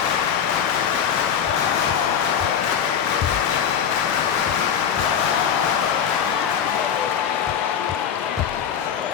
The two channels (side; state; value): right; quieter; 8.1 dB